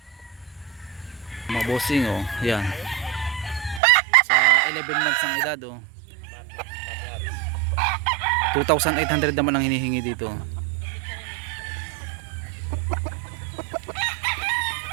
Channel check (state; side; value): drops out; left; at 3.8 s